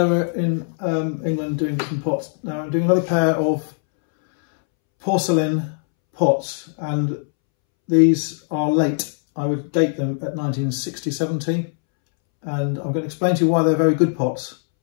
we're in England doing different pots. Now I'm doing another pair of porcelain pots, and these are late. I would date them at 1960-70, and I'm going to explain to you why they're very good pots.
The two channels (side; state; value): right; silent; 65 dB below the other